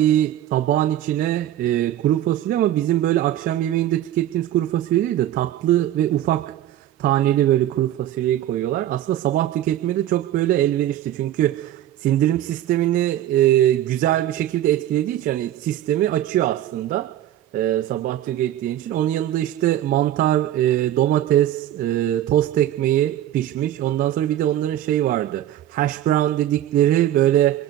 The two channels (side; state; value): left; quieter; 12.6 dB